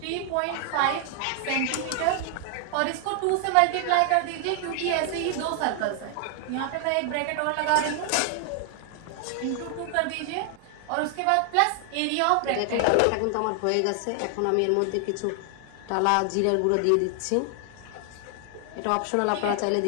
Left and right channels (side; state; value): both; different; correlation 0.00